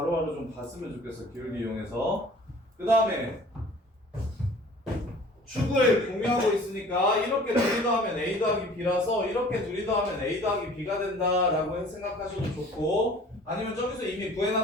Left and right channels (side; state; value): both; normal; correlation 0.48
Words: 좀 봤으면 좋겠어. 기울기 이용해서. 그 다음에 축을 공유하고 있으니까 이렇게 둘이 더하면 a 더하기 b라서 이렇게 둘이 더하면 a 더하기 b가 된다라고 생각하셔도 좋고 아니면 저기서 이미